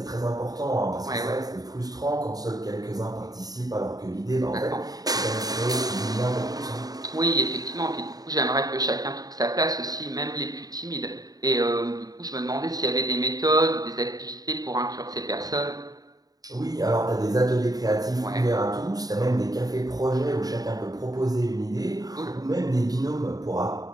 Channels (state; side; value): late; left; 0.18 ms